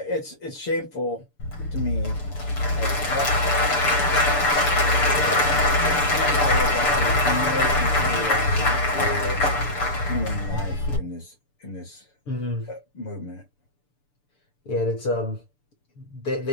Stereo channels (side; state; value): right; late; 6.8 ms